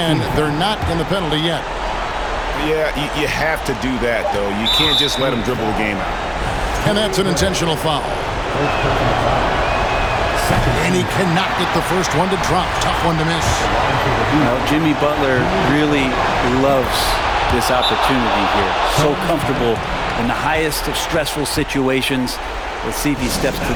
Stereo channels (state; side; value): identical; both; correlation 1.00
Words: They're not in the penalty yet. Yeah, you have to do that, though. You can't just let them dribble the game out. And that's an intentional foul. And he cannot get the first one to drop. Tough one to miss. You know, Jimmy Butler really loves this opportunity here. So comfortable in the highest of stressful situations. Let's see if he steps to